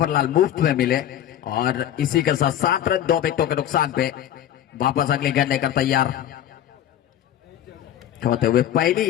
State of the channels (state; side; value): quieter; right; 11.2 dB